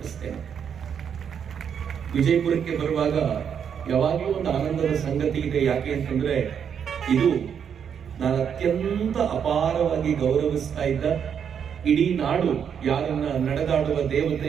ವಿಜಯಪುರಕ್ಕೆ ಬರುವಾಗ ಯಾವಾಗಲೂ ಒಂದು ಆನಂದದ ಸಂಗತಿ ಇದೆ. ಯಾಕೆ ಅಂತಂದ್ರೆ ಇದು ನಾನು ಅತ್ಯಂತ ಅಪಾರವಾಗಿ ಗೌರವಿಸ್ತಾ ಇದ್ದ ಇಡೀ ನಾಡು ಯಾರನ್ನ ನಡೆದಾಡುವ ದೇವತೆ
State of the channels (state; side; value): quieter; left; 7.8 dB